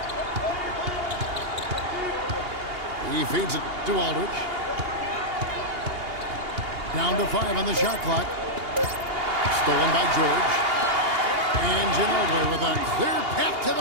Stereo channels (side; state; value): left; late; 2.8 ms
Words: He feeds it to Aldridge. Down to 5 on the shot clock. Stolen by George. And Ginobili with a clear path to